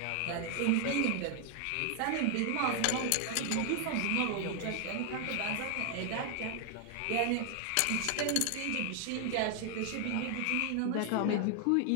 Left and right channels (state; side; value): different; both; correlation 0.00